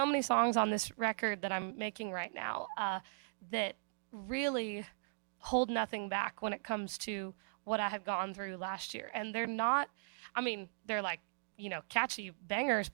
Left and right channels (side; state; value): left; silent; digital silence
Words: many songs on this record that I'm making right now that really hold nothing back when it comes to what I had gone through last year. And they're not, they're like, catchy bangers,